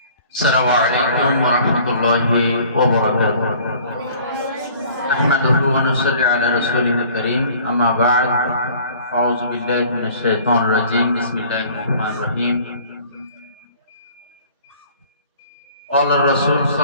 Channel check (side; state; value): both; inverted; correlation -0.51